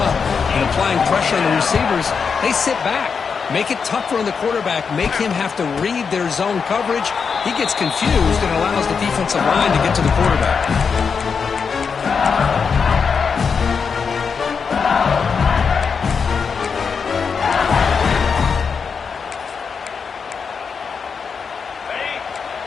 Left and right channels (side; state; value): right; quieter; 5.8 dB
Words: and applying pressure on the receivers, they sit back, make it tougher on the quarterback, make him have to read their zone coverage. He gets confused and allows the defensive line to get to the quarterback.